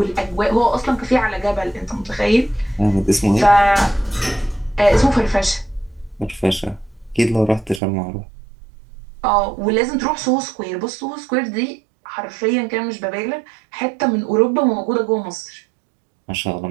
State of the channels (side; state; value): left; drops out; at 7.8 s